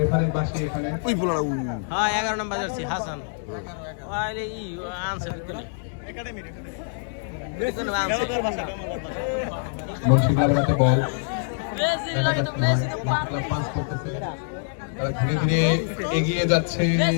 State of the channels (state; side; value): silent; right; digital silence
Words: পাশে এখানে হ্যাঁ 11 নম্বর জার্সি হাসান ওয়াইলে ই আনসার করে মুন্সি ক্লাবের হাতে বল, পাস করতেছে, তারা ধীরে ধীরে এগিয়ে যাচ্ছে